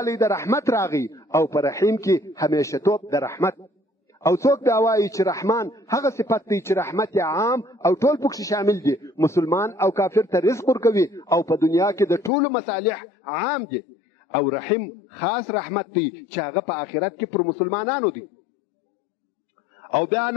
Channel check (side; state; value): right; drops out; at 12.3 s